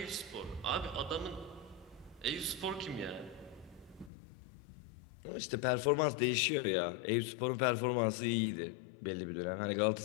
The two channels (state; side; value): drops out; right; at 4.1 s